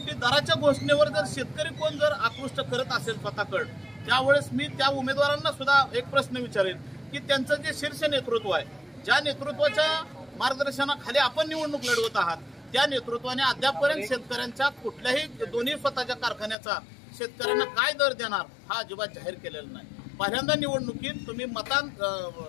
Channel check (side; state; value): right; drops out; at 16.6 s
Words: दराच्या घोषणेवर जर शेतकरी कोण जर आकृष्ट करत असेल स्वतःकडे त्यावेळेस मी त्या उमेदवारांना सुद्धा एक प्रश्न विचारेन की त्यांचं जे शीर्ष नेतृत्व आहे, ज्या नेतृत्वाच्या मार्गदर्शनाखाली आपण निवडणूक लढवत आहात, त्या नेतृत्वाने अद्यापपर्यंत शेतकऱ्यांच्या कुठल्याही दोन्ही स्वतःच्या कारखान्याचा शेतकऱ्यांना काय दर देणार हा अजिबात जाहीर केलेला नाही। पहिल्यांदा निवडणुकीत तुम्ही